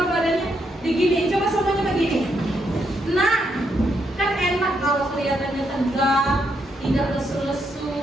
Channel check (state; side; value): normal; both; correlation 0.78